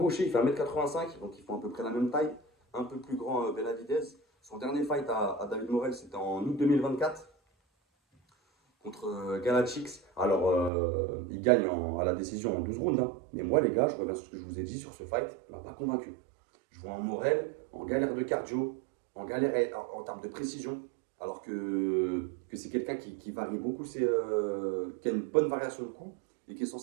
il fait 1m85, donc ils font à peu près la même taille. Un peu plus grand Benavidez. Son dernier fight à David Morel, c'était en août 2024 contre Galachix. Alors, il gagne à la décision en 12 rounds. Hein. Mais moi, les gars, je reviens sur ce que je vous ai dit sur ce fight, il m'a pas convaincu. Je vois un Morel en galère de cardio, en galère en termes de précision, alors que c'est quelqu'un qui varie beaucoup, qui a une bonne variation de coups et qui est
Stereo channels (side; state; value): left; drops out; at 10.7 s